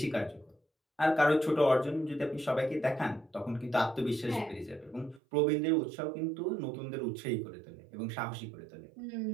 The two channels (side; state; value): left; drops out; at 5.2 s